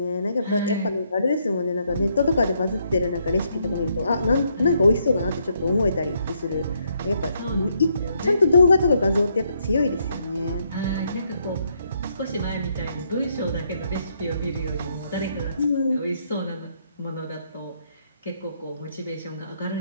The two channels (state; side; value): inverted; both; correlation -0.74